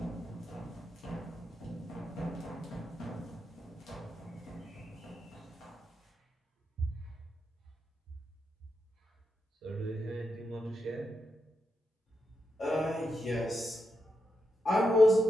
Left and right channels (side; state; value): both; normal; correlation 0.85